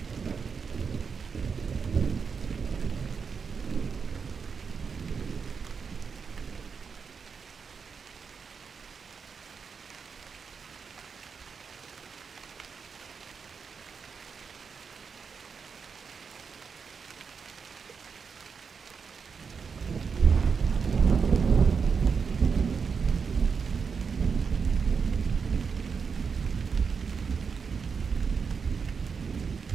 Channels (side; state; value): left; quieter; 5.8 dB